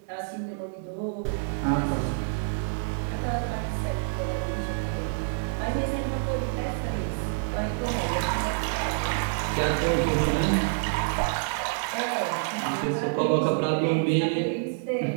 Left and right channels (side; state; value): left; silent; digital silence